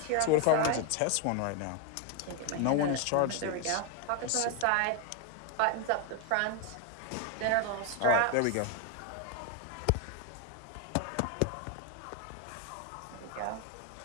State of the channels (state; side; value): different; both; correlation 0.01